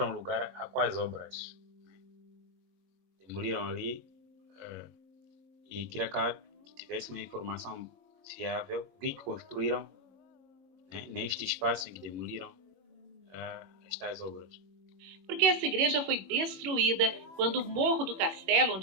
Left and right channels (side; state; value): left; late; 21 ms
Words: lugar a quais obras. Demoliram ali e queria que tivesse uma informação fiável, o que construíram, né, neste espaço em que demoliram estas obras. Porque essa igreja foi destruída quando o Morro do Castelo,